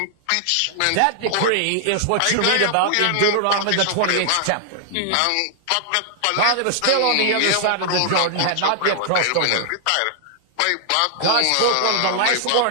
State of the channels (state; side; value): different; both; correlation -0.01